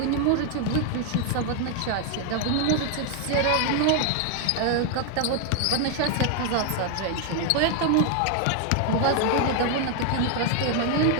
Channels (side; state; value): both; different; correlation 0.00